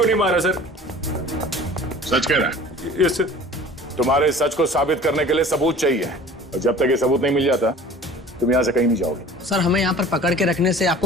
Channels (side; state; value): both; normal; correlation 0.44